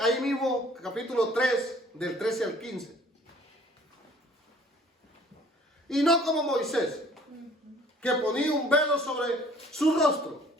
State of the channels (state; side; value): normal; both; correlation 0.54